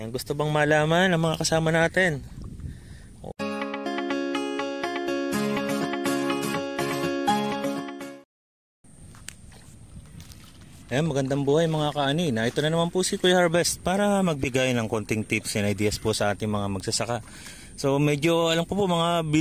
gusto bang malaman ang mga kasama natin? Ayan, magandang buhay mga kaanina. Ito na naman po si Kuya Harvest para magbigay ng konting tips and ideas po sa ating mga magsasaka. So medyo alam ko po mga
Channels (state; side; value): identical; both; correlation 1.00